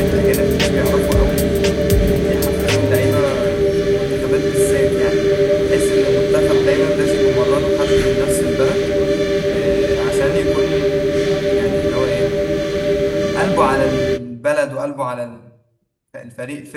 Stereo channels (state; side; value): identical; both; correlation 1.00